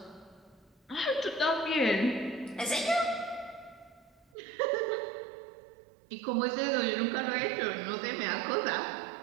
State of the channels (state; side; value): drops out; left; at 4.2 s